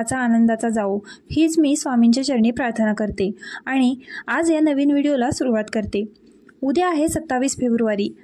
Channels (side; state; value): both; identical; correlation 1.00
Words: आनंदाचा जावो हीच मी स्वामींच्या चरणी प्रार्थना करते आणि आज या नवीन व्हिडिओला सुरुवात करते. उद्या आहे 27 फेब्रुवारी,